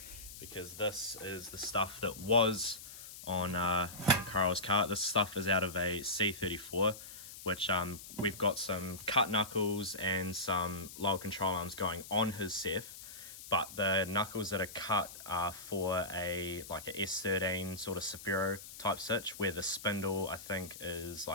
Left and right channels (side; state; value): left; noise; hiss, 13 dB below the sound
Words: because this is the stuff that was on Carl's cart. This stuff is out of a C34, which we've got some cut knuckles and some lower control arms going on his Seth. But the knuckles that are cut are for a S13 sort of Saphiro type stitch, where the spindle I think is